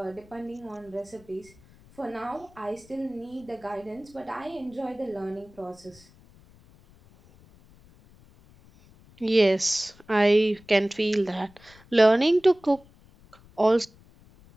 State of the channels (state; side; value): noise; left; rumble, 26 dB below the sound